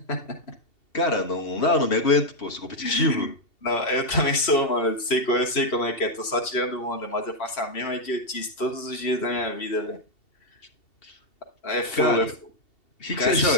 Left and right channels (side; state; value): right; late; 2.7 ms